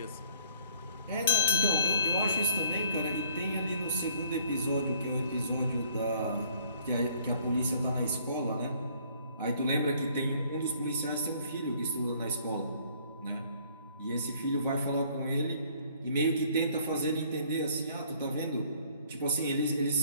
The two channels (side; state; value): both; inverted; correlation -0.60